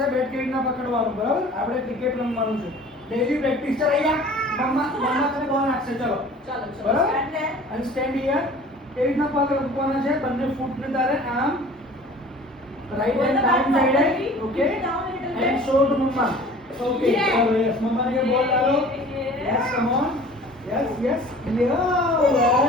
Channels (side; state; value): both; normal; correlation 0.46